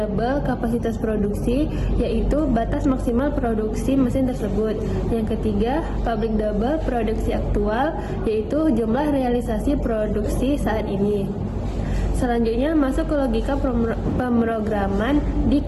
kapasitas produksi, yaitu batas maksimal produksi mesin tersebut. Yang ketiga, public double produksi aktual, yaitu jumlah realisasi produksi saat ini. Selanjutnya masuk ke logika pemrograman di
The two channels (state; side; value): identical; both; correlation 1.00